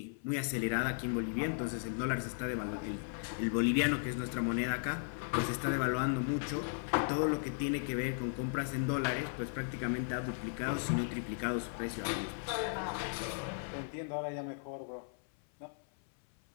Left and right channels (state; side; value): silent; right; 54 dB below the other